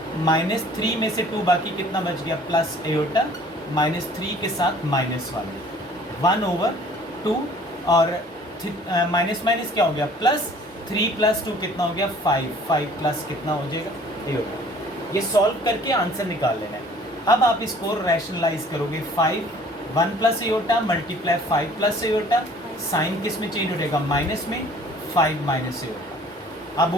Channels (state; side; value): normal; both; correlation 0.52